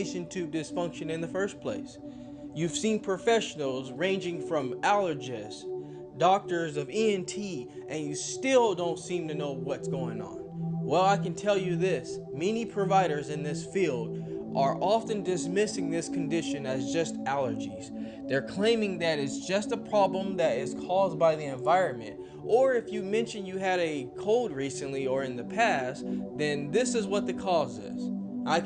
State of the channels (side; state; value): both; identical; correlation 1.00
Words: Tube Dysfunction in the first place. You've seen professionals ranging from allergists, doctors of ENT, and you still don't seem to know what's going on. Well, I can tell you this, many providers in this field are often dismissing this condition as just allergies. They're claiming that it's just a problem that is caused by the environment, or if you mention you had a cold recently or in the past, then this is what the cause is. I